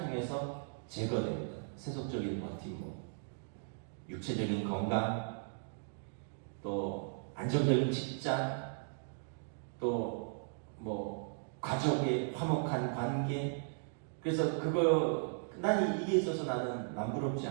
제거됩니다. 세속적인 버팀목, 육체적인 건강, 또 안정적인 직장, 또 뭐 가족의 화목한 관계. 그래서 난 이게 있어서 나는 남부럽지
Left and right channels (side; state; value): left; silent; digital silence